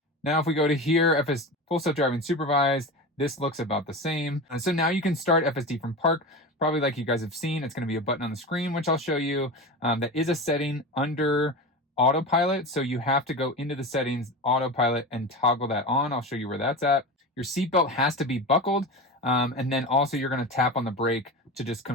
Now, if we go to here, Full Self-Driving Supervised, this looks about the same. So now you can start FSD from park, probably like you guys have seen. It's going to be a button on the screen, which I'll show you. That is a setting under Autopilot, so you have to go into the settings, Autopilot, and toggle that on. I'll show you where that's at. Your seatbelt has to be buckled, and then also you're going to tap on the brake to just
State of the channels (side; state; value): both; normal; correlation 0.26